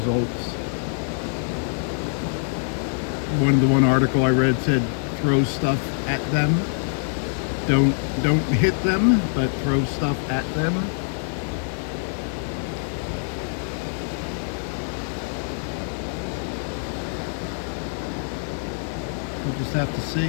One article I read said throw stuff at them. Don't hit them, but throw stuff at them. We'll just have to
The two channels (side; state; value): right; silent; digital silence